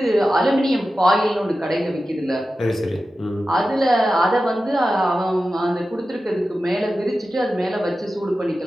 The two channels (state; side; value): normal; both; correlation 0.93